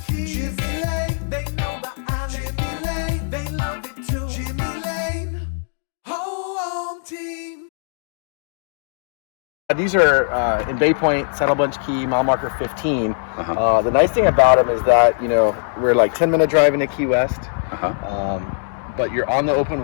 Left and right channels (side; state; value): right; silent; digital silence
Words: keys. Jimmy Lane, they know the island. Jimmy Lane, they love it too. Jimmy Lane, home team. These are in Bay Point, Saddle Bunch Key, mile marker 15. The nice thing about them is that, you know, we're like 10-minute drive into Key West. But you're on the open